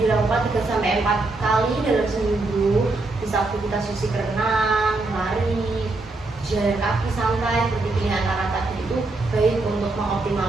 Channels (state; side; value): quieter; left; 3.2 dB